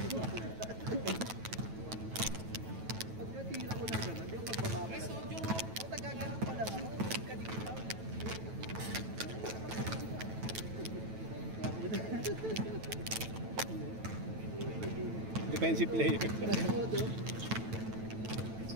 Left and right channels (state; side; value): late; left; 9.1 ms